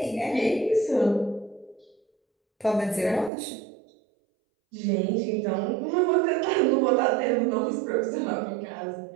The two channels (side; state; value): left; drops out; at 3.3 s